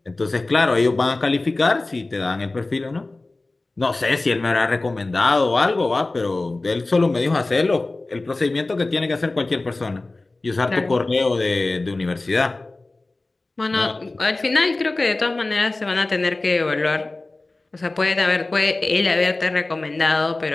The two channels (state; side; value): quieter; right; 3.1 dB